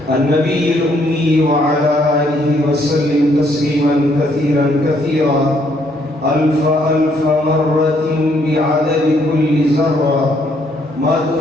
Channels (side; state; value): both; normal; correlation 0.69